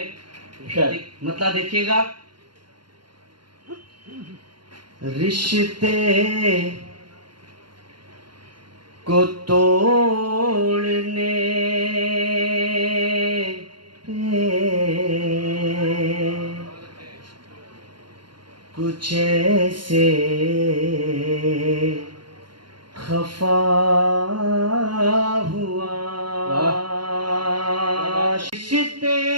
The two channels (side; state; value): left; late; 0.72 ms